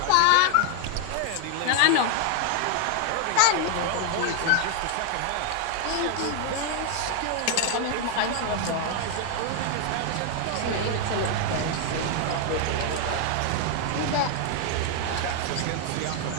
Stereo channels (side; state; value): both; different; correlation 0.00